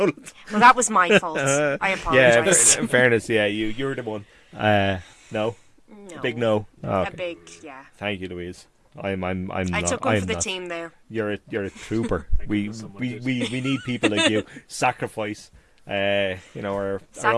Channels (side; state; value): both; identical; correlation 1.00